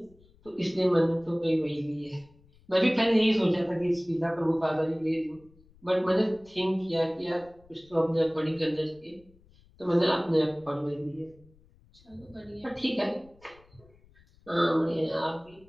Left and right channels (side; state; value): left; noise; rumble, 28 dB below the sound